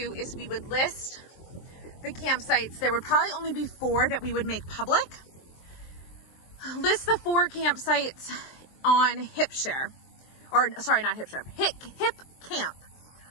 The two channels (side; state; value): right; late; 23 ms